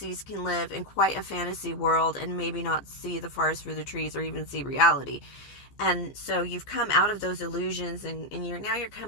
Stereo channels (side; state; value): right; late; 14 ms